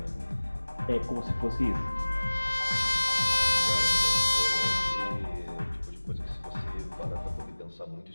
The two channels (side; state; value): both; inverted; correlation -1.00